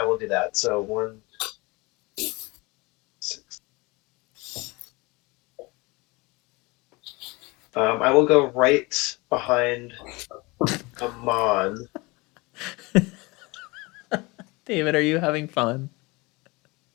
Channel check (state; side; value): quieter; right; 24.7 dB